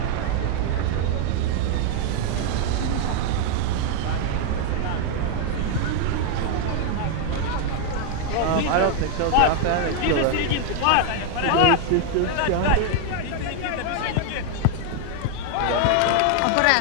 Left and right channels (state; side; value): different; both; correlation 0.00